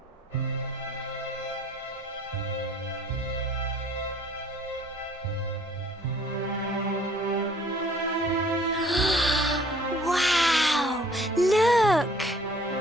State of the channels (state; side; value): normal; both; correlation 0.56